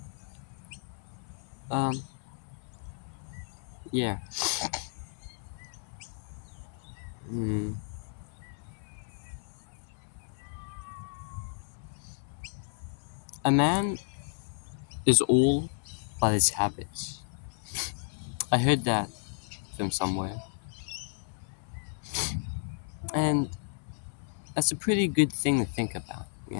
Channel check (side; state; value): right; silent; 56 dB below the other